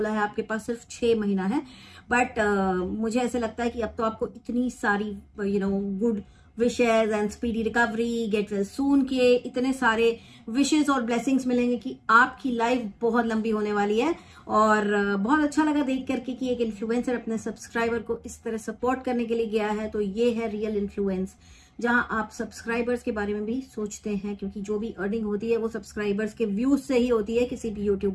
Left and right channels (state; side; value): identical; both; correlation 1.00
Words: है आपके पास सिर्फ 6 महीना है। बट मुझे ऐसे लगता है कि अब तो आपको इतनी सारी good wishes and speedy recovery, get well soon के इतने सारे विशेज और ब्लेसिंग्स मिलेंगे कि आपकी लाइफ बहुत लंबी होने वाली है। और बहुत अच्छा लगा देख करके कि एक इन्फ्लुएंसर अपने सब्सक्राइबर को इस तरह सपोर्ट करने के लिए गया है। तो ये है रियल इन्फ्लुएंस, जहां आप सब्सक्राइबर्स के बारे में भी सोचते हैं, क्योंकि जो भी अर्निंग होती है वो सब्सक्राइबर्स के व्यूज से ही होती है किसी भी